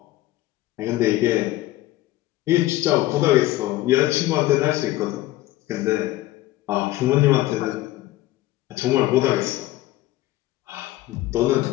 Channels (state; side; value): quieter; right; 16.5 dB